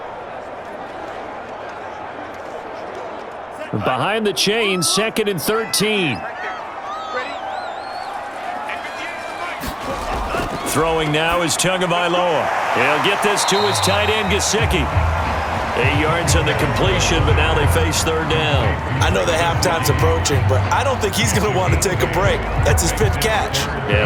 Behind the chains, 2nd and 13. Throwing now is Tagovailoa. He'll get this to his tight end, Gesicki. 8 yards on the completion, but now they face 3rd down. I know the halftime's approaching, but I don't think he's going to want to take a break. That's his 5th catch.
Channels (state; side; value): identical; both; correlation 1.00